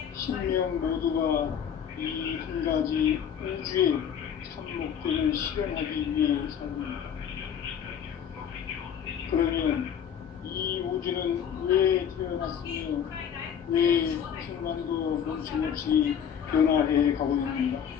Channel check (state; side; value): quieter; right; 8.3 dB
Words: 신명 모두가 이 한 가지 우주의 참 목적을 실현하기 위해 삽니다. 그러면 이 우주는 왜 태어났으며 왜 순간도 멈춤없이 변화해 가고 있는가?